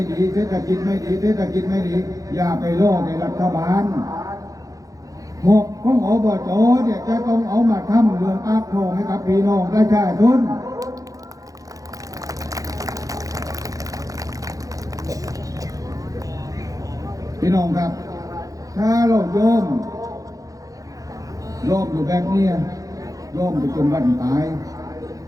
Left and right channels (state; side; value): late; left; 0.17 ms